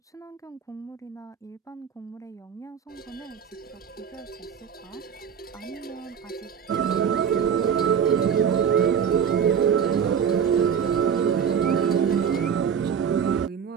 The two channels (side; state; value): left; quieter; 7.5 dB